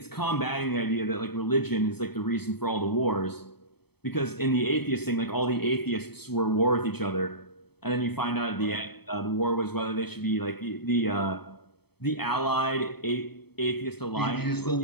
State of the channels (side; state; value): right; late; 0.97 ms